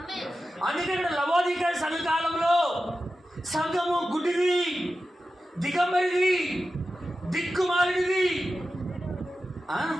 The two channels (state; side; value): normal; both; correlation 0.92